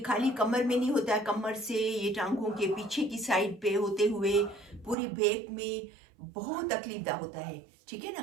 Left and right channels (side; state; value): left; drops out; at 5.0 s